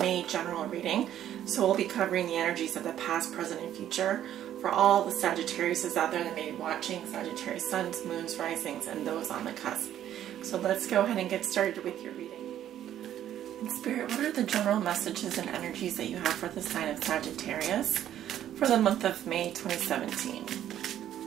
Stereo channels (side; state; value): left; quieter; 11.2 dB